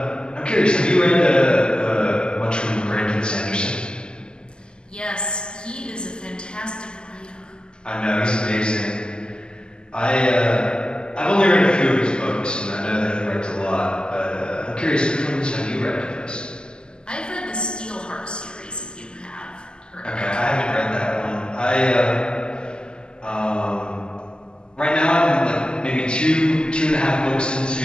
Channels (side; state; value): right; late; 0.047 ms